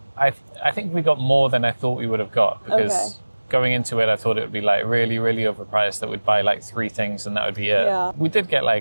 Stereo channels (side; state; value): both; inverted; correlation -1.00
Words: I think we got more than I thought we would have got, because going into it, I thought it would be like really, really overpriced, that we'd buy like 3 things and that would be it. Yeah. We did get